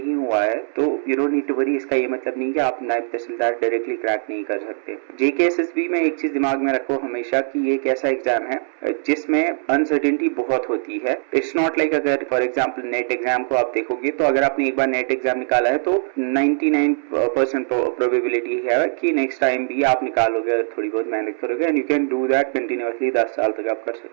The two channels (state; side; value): silent; left; 65 dB below the other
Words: हुआ है तो you don't need to worry. इसका ये मतलब नहीं कि आप नायब तहसीलदार डायरेक्टली क्रैक नहीं कर सकते। जेकेएसएसबी में एक चीज दिमाग में रखो हमेशा कि ये एक ऐसा एग्जाम है जिसमें अनसर्टेनिटी बहुत होती है। इट्स नॉट लाइक अगर फॉर एग्जाम्पल नेट एग्जाम को आप देखोगे तो अगर आपने एक बार नेट एग्जाम निकाला है तो 99% प्रोबेबिलिटी है कि नेक्स्ट टाइम भी आप निकालोगे अगर थोड़ी बहुत मेहनत करोगे, and you can do that continuously 10 साल तक आप कर